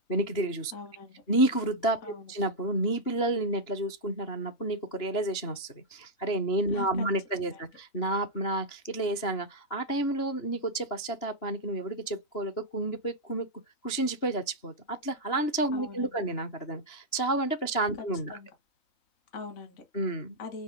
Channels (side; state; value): right; late; 2.9 ms